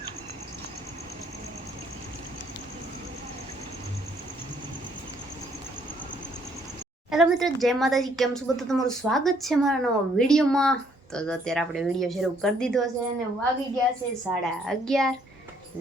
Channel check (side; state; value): both; normal; correlation 0.66